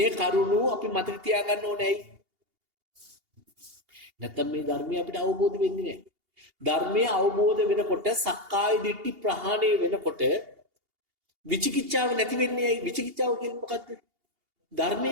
කරුණ අපි මතක තියාගන්න ඕනේ. නැත්නම් මේ ධර්මය අපිට අවබෝධ වෙන්නේ නැහැ. ධර්මය අවබෝධ වෙනකොට සක්කාය දිට්ඨි ප්‍රහාණය වෙනකොට විචිකිච්ඡාව නැති වෙන්නේ ඇයි? විචිකිච්ඡාව කියන්නේ මොකද්ද?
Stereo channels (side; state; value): left; late; 2.8 ms